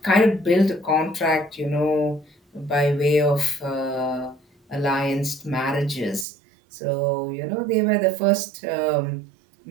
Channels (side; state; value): left; drops out; at 6.2 s